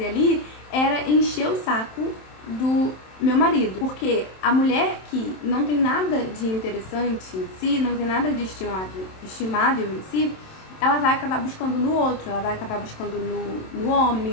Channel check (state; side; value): late; right; 27 ms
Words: ali era encher o saco do meu marido. Porque a mulher que não tem nada de interessante em si, não tem nada de estimável em si, ela vai acabar buscando no outro, ela vai acabar buscando no